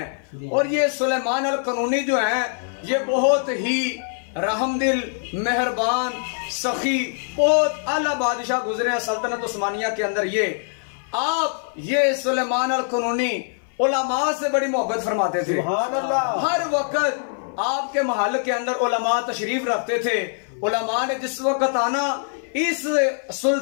और ये सुलेमान अल कनूनी जो है ये बहुत ही रहमदिल, मेहरबान, सखी, बहुत आला बादशाह गुजरे हैं सल्तनत उस्मानिया के अंदर। ये सुलेमान अल कनूनी उलमा से बड़ी मोहब्बत फरमाते थे। हर वक्त आपके महल के अंदर उलमा तशरीफ रखते थे। उलमा ने जिस वक्त आना, इस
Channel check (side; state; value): right; silent; 58 dB below the other